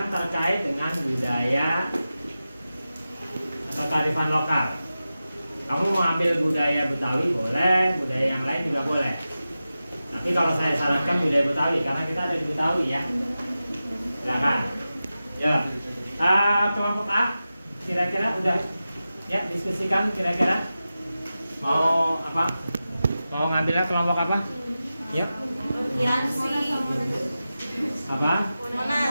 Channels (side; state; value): both; inverted; correlation -0.94